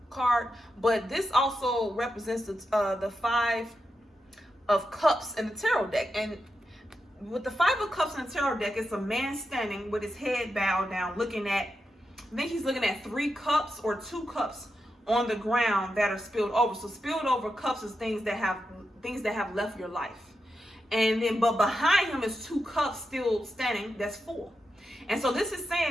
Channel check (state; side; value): normal; both; correlation 0.88